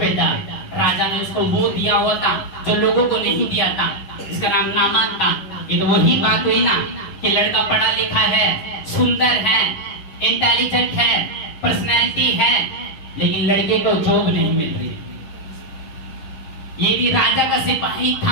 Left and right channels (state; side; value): late; right; 10 ms